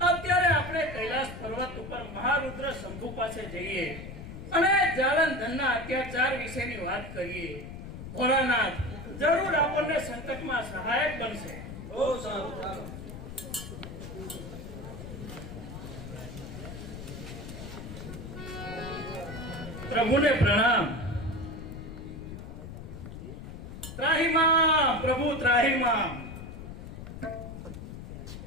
અત્યારે આપણે કૈલાસ પર્વત ઉપર મહારુદ્ર શંભુ પાસે જઈએ અને જાલંધરના અત્યાચાર વિશેની વાત કરીએ. ભોળાનાથ જરૂર આપણને સંકટમાં સહાયક બનશે. બહુ સારું. ચાલો. પ્રભુને પ્રણામ. ત્રાહિમામ પ્રભુ ત્રાહિમામ.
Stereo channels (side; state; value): left; noise; rumble, 10 dB below the sound